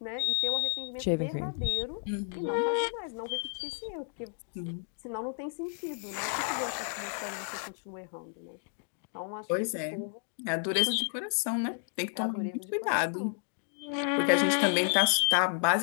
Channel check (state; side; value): silent; right; 57 dB below the other